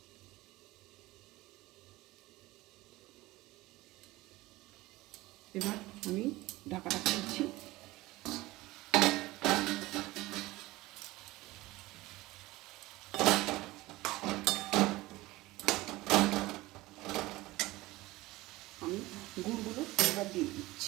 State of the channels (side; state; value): left; quieter; 19.2 dB